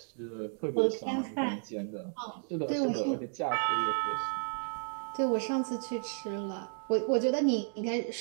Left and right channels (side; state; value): left; silent; 56 dB below the other